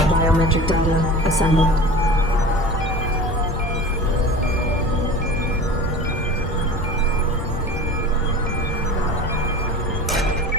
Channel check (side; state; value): both; normal; correlation 0.37